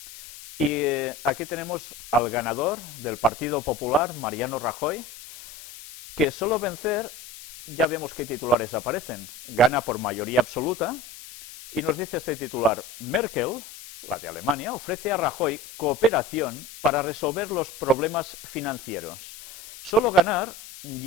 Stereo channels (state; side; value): noise; left; hiss, 15 dB below the sound